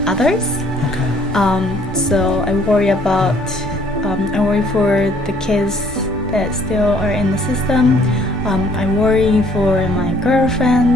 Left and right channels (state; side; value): normal; both; correlation 0.60